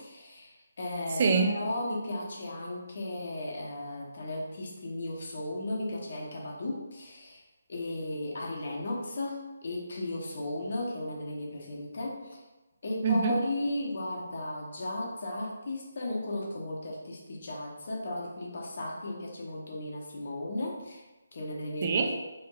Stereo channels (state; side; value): inverted; both; correlation -0.79